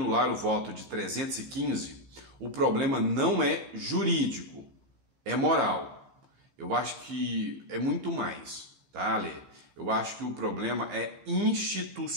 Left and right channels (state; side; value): late; left; 15 ms